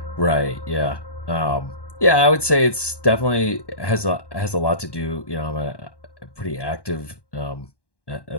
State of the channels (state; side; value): late; right; 1.1 ms